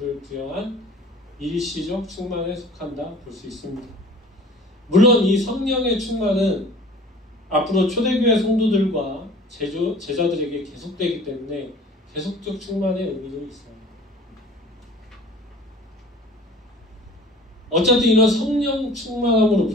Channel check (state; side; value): normal; both; correlation 0.45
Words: 부여한 일시적 충만에 속한다 볼 수 있습니다. 물론 이 성령의 충만은 앞으로 초대교회 성도들과 제자들에게 계속되기 때문에 계속적 충만의 의미도 있어요. 어쨌든 이런 성령 충만함으로